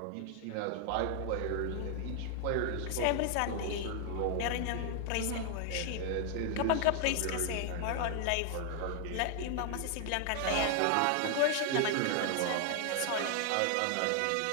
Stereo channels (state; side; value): different; both; correlation 0.00